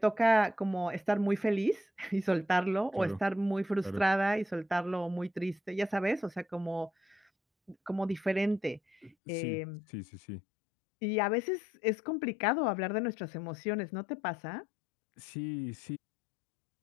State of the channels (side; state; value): right; drops out; at 9.2 s